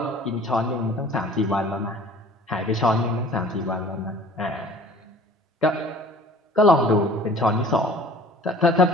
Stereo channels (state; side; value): normal; both; correlation 0.48